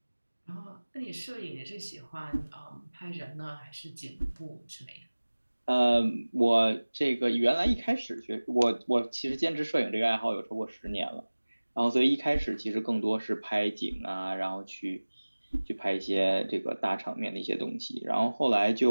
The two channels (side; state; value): both; inverted; correlation -1.00